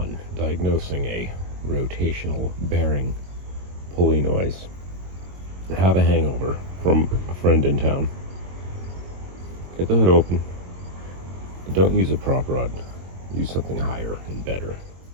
diagnosing a rotational bearing pulley noise. I have a hangover from a friend in town. Get the hood open. Don't use a prop rod. Use something higher and better.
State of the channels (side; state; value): left; late; 22 ms